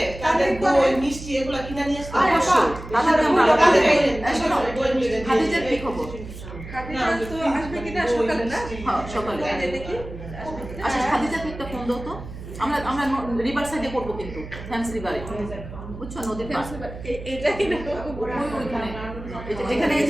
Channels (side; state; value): right; noise; hum, 12 dB below the sound